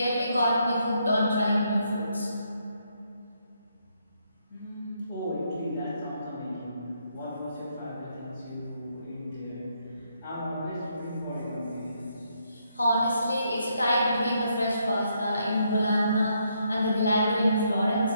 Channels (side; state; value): both; inverted; correlation -0.75